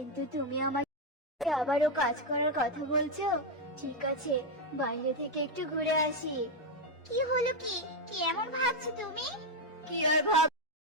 তুমি আমাকে আবারও কাজ করার কথা বলছো। ঠিক আছে, বাইরে থেকে একটু ঘুরে আসি। কি হলো কি? কি এমন ভাবছো তুমি? কি আর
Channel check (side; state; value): both; normal; correlation 0.04